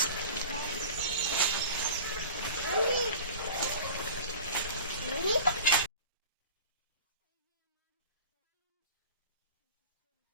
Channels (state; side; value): inverted; both; correlation -0.39